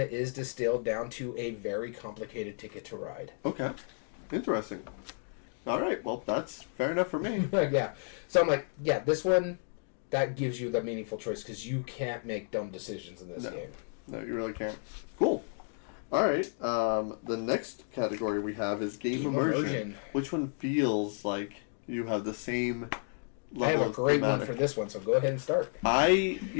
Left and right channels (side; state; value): right; silent; 56 dB below the other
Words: is distilled down to a very complicated Ticket to Ride. Okay. Interesting. All right. Well, that's fair enough for me. Yeah. So I'm like, yeah, this one, that gives you the meaningful choice because you can't make dumb decisions in this game. No, you really can't. Cool. All right. The next category we have is game immersion. Which one feels like you have the same level I have a of great thematic? one for this one, so go ahead and start. I